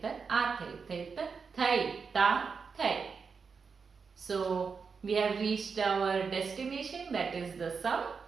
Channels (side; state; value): left; quieter; 5.5 dB